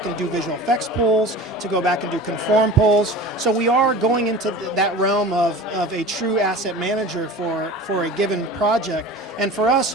and do visual effects pulls, to go back and do conform pulls. So we are going into that realm of a true asset manager for a given project. And for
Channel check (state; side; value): normal; both; correlation 0.38